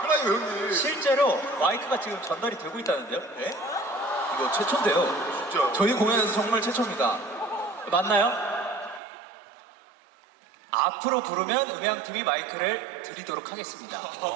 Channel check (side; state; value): left; drops out; at 9.0 s